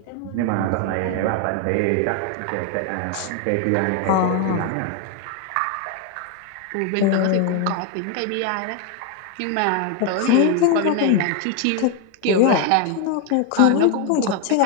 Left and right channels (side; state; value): both; different; correlation 0.01